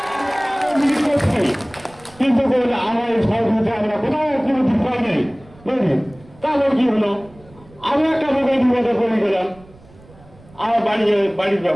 কিন্তু আমার এই সহযোগিতা আমরা কোথাও কোনো বিষয় নেই, বুঝলি। তারপর কি হলো, আমি একটা লোকের বিপদে পড়ে গেলাম। আমার বাড়ির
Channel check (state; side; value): noise; right; rumble, 24 dB below the sound